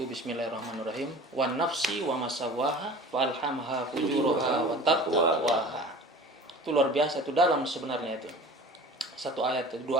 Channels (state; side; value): normal; both; correlation 0.41